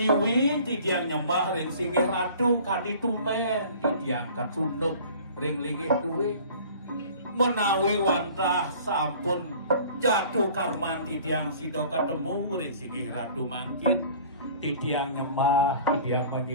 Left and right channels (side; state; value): both; inverted; correlation -0.47